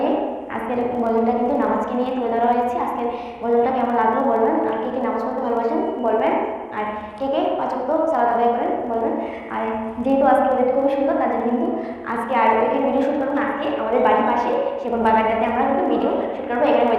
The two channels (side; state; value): both; identical; correlation 1.00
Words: আজকের গজলটা কিন্তু নামাজকে নিয়ে তুলে ধরা হয়েছে। আজকের গজলটা কেমন লাগলো বলবেন, আর কে কে নামাজ পড়তে ভালোবাসেন বলবেন, আর কে কে ৫ ওয়াক্ত সালাত আদায় করেন বলবেন। আর যেহেতু আজকে ওয়েদারটা খুবই সুন্দর, তার জন্য কিন্তু আজকে আর এখানে ভিডিও শ্যুট করবো না। আজকে আমাদের বাড়ির পাশে সেগুন বাগানটাতে আমরা কিন্তু ভিডিও শ্যুট করবো। এখানে